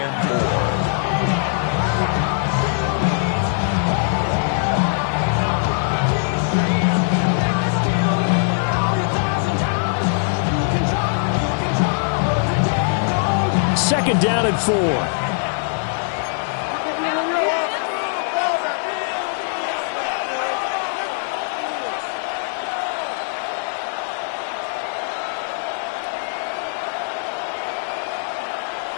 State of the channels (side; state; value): right; silent; digital silence